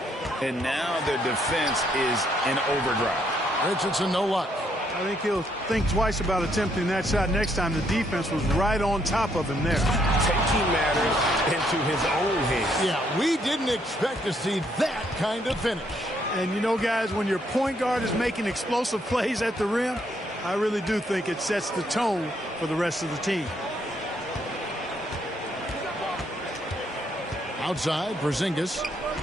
and now their defense is in overdrive. Richardson, no luck. I think he'll think twice about attempting that shot next time. The defense was right on top of him there. Taking matters into his own hands. Yeah, we didn't expect to see that kind of finish. And you know, guys, when your point guard is making explosive plays at the rim, I really do think it sets the tone for the rest of the team. Outside, Porzingis.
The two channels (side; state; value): both; normal; correlation 0.72